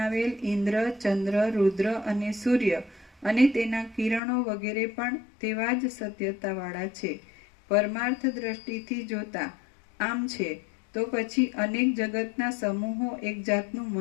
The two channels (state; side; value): drops out; right; at 4.2 s